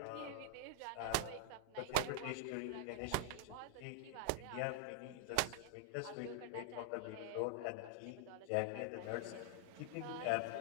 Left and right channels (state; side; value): different; both; correlation 0.00